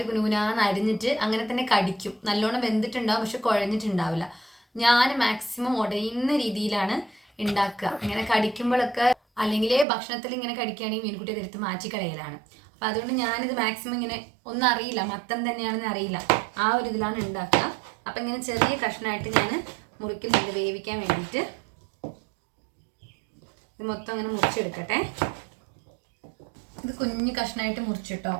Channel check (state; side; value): drops out; left; at 9.9 s